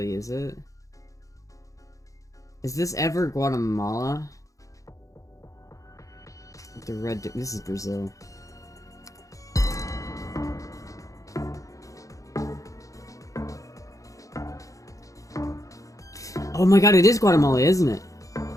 is it? Is this ever Guatemala? The red, this is Brazil. Oh my god, it is Guatemala, isn't it?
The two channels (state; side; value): late; right; 0.16 ms